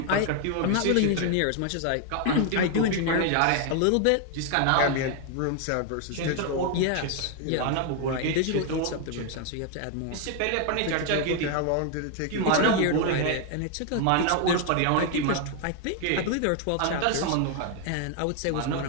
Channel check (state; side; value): different; both; correlation 0.00